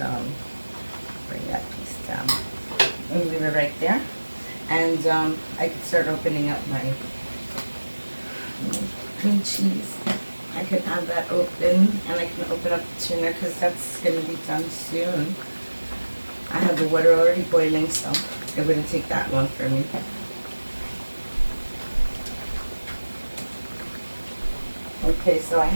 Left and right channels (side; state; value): both; inverted; correlation -1.00